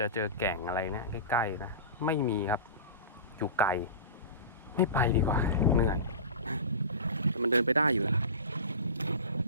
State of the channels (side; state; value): both; inverted; correlation -0.30